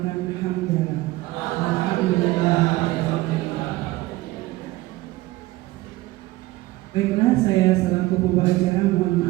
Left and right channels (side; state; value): left; quieter; 18.6 dB